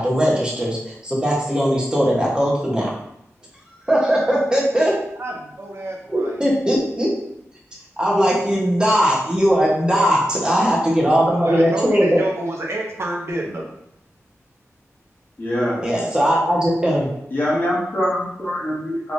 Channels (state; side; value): normal; both; correlation 0.90